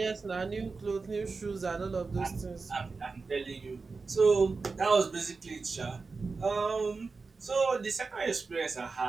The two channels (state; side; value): quieter; left; 4.3 dB